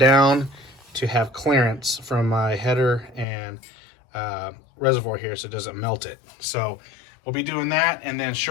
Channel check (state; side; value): drops out; right; at 3.2 s